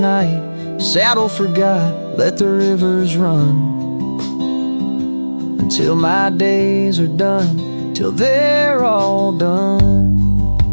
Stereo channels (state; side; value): inverted; both; correlation -1.00